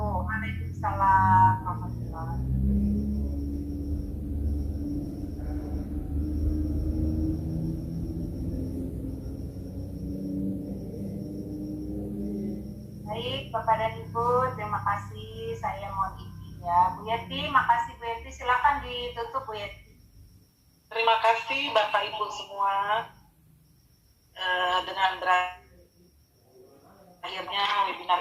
Waalaikumsalam warahmatullahi wabarakatuh. Baik, Bapak dan Ibu, terima kasih. Saya mohon izin ya. Bu Yeti, makasih Bu Yeti. Silakan ditutup Bu Yeti. Terima kasih Bapak Ibu semua. Dengan berakhirnya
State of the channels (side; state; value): both; identical; correlation 1.00